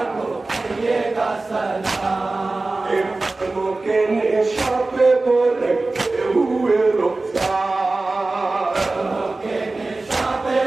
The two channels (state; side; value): quieter; left; 3.3 dB